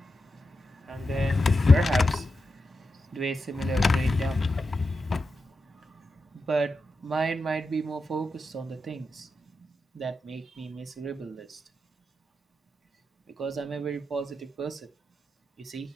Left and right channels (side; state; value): both; normal; correlation 0.89